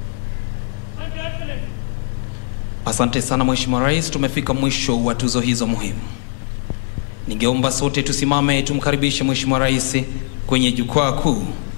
Thank you, Your Excellency. Asante sana Mheshimiwa Rais, tumefika mwisho wa tuzo hizo muhimu. Ningeomba sote tusimame tumkaribishe Mheshimiwa Rais kwenye jukwaa kuu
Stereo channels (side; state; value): right; silent; digital silence